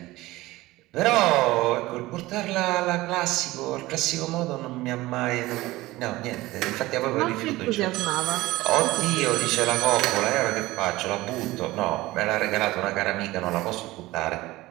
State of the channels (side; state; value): left; quieter; 18.7 dB